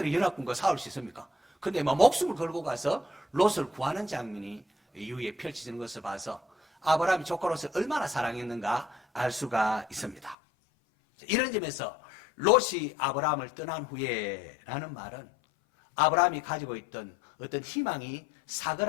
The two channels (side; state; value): right; drops out; at 10.4 s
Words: 연합군과 싸울 수 있습니까? 근데 목숨을 걸고 가서 롯을 구하는 장면이 이후에 펼쳐지는 것을 봐서 아브라함이 조카 롯을 얼마나 사랑했는가 알 수가 있습니다. 이런 점에서 롯이 아브라함을 떠난 후에라는 말은 아브라함이 가지고 있던 어떤 희망이